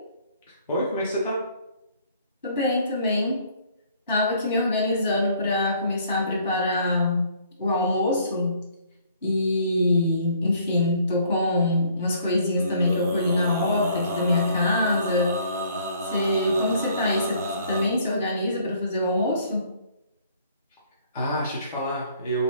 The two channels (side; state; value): both; inverted; correlation -0.60